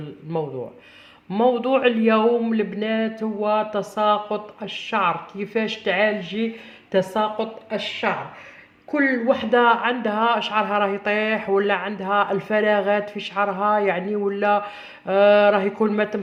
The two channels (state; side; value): identical; both; correlation 1.00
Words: موضوع اليوم البنات هو تساقط الشعر، كيفاش تعالجي تساقط الشعر. كل وحده عندها شعرها راه يطيح، ولا عندها الفراغات في شعرها يعني، ولا راه يكون ما